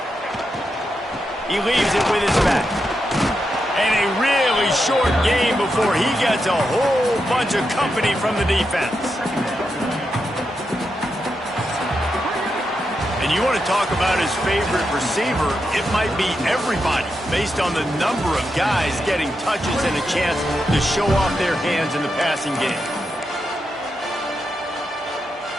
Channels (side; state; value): both; normal; correlation 0.85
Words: He leaves it with his back. And a really very short game before he gets a whole bunch of company from the defense. And you want to talk about his favorite receiver, it might be everybody, based on the number of guys getting touches and a chance to show off their hands in the passing game.